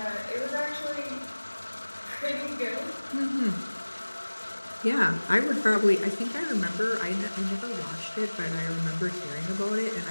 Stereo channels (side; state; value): both; inverted; correlation -1.00